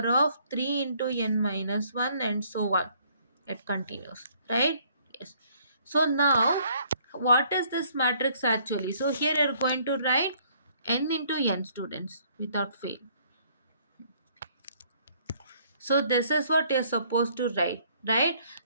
of 3 into n minus 1, and so on. It continues, right? Yes. So now what is this matrix actually? So here you are going to write n into n, students, without fail. So this is what you're supposed to write, right?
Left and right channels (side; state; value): both; inverted; correlation -0.63